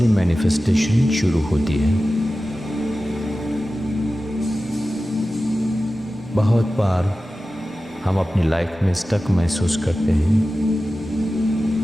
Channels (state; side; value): normal; both; correlation 0.95